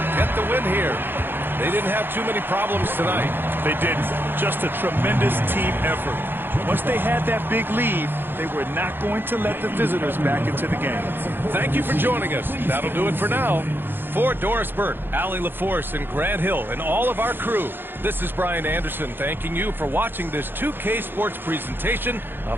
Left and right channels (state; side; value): late; left; 0.10 ms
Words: get the win here. They didn't have too many problems tonight. They didn't. Just a tremendous team effort. Once they had that big lead, they were not going to let the visitors back into the game. Thank you for joining us. That'll do it for now. For Doris Burt, Allie LaForce, and Grant Hill, and all of our crew, this is Brian Anderson thanking you for watching this 2K Sports presentation